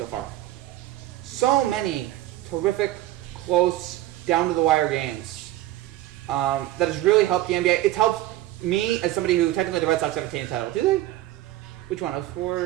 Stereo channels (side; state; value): left; quieter; 15.0 dB